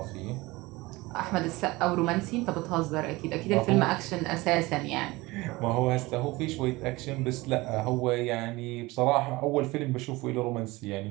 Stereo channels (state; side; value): quieter; left; 21.4 dB